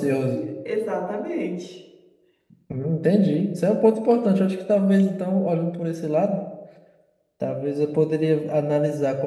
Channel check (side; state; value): both; identical; correlation 1.00